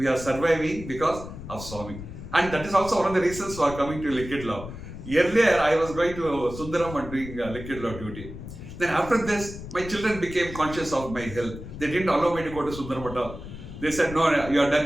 are surviving because of Swami. And that is also one of the reasons for coming to Liquid Love. Earlier, I was going to Sundaram and doing Liquid Love duty. Then after this, my children became conscious of my health. They didn't allow me to go to Sundaram at all. They said, no, you are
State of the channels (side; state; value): left; noise; rumble, 11 dB below the sound